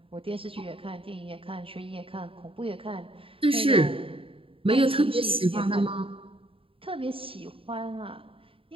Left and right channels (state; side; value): late; left; 0.26 ms